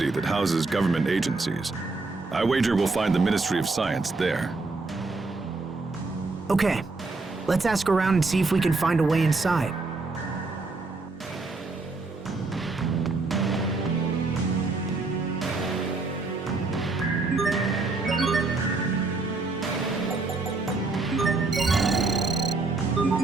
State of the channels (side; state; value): left; quieter; 3.6 dB